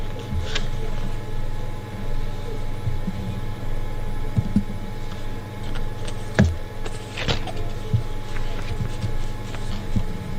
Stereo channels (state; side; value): identical; both; correlation 1.00